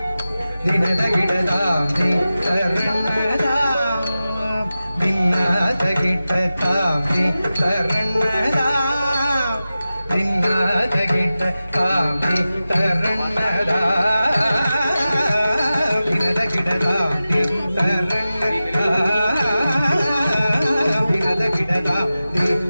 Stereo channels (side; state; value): both; inverted; correlation -0.94